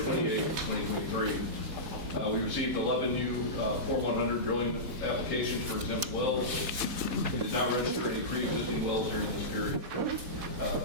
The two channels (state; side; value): late; left; 4.1 ms